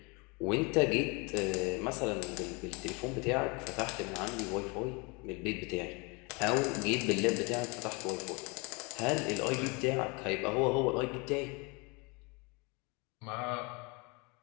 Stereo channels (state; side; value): quieter; right; 29.3 dB